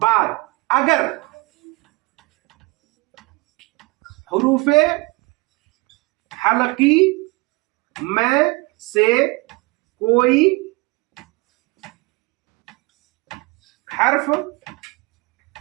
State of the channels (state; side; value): quieter; left; 25.9 dB